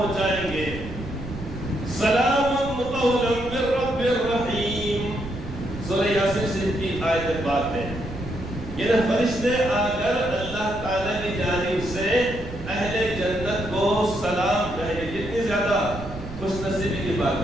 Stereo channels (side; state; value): right; noise; rumble, 11 dB below the sound